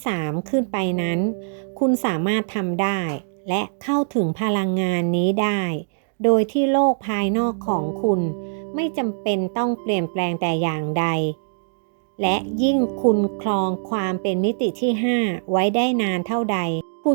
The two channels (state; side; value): silent; left; digital silence